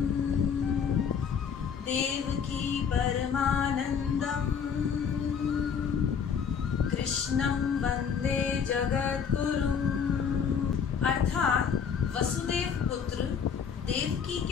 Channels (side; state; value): right; quieter; 6.9 dB